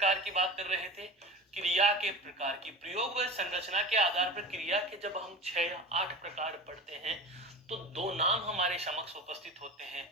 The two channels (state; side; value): normal; both; correlation 0.31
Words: की बात कर रहे थे? क्रिया के प्रकार की। प्रयोग व संरचना के आधार पर क्रिया के जब हम 6 या 8 प्रकार पढ़ते हैं तो दो नाम हमारे समक्ष उपस्थित होते हैं।